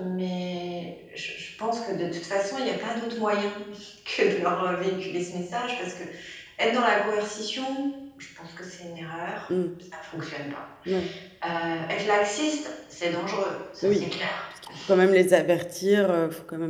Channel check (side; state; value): both; identical; correlation 1.00